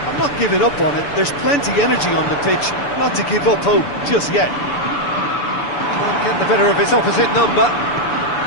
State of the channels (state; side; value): late; right; 6.9 ms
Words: I'm not giving up on it. There's plenty energy on the pitch, not to give up hope just yet. Can't get the better of his opposite number.